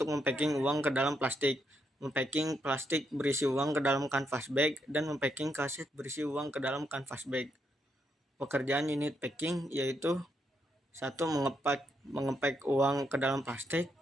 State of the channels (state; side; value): normal; both; correlation 0.78